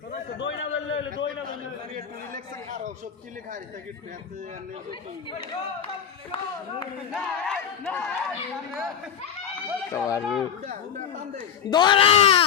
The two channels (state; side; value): quieter; right; 8.0 dB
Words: তো দই না বললে দই না বললে একটু রিল্যাক্স খাও সব কি লেখা আছে টিকিট দৌড়া